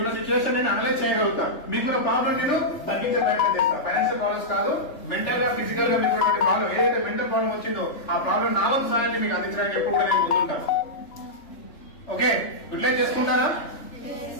సిచ్యువేషన్ నేను అనలైజ్ చేయగలుగుతా. మీకున్న ప్రాబ్లం నేను తగ్గించే ప్రయత్నం చేస్తా. ఫైనాన్షియల్ ప్రాబ్లమ్స్ కాదు, మెంటల్ గా ఫిజికల్ గా మీకు ప్రాబ్లం ఏదైతే మెంటల్ ప్రాబ్లం వచ్చిందో ఆ ప్రాబ్లం నా వంతు సహాయాన్ని మీకు అందించడానికి ఎప్పుడు కూడా నేను ముందుంటాను. ఓకే, యూటిలైజ్ చేసుకుంటారా?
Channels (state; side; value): late; right; 3.4 ms